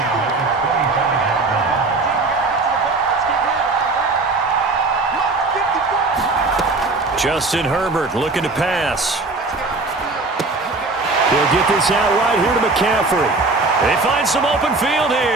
Justin Herbert looking to pass. He'll get this out right here to McCaffrey. They find some open field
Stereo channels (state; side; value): quieter; left; 3.5 dB